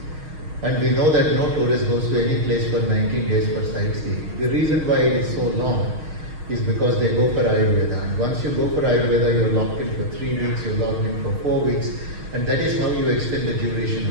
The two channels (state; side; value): late; left; 6.4 ms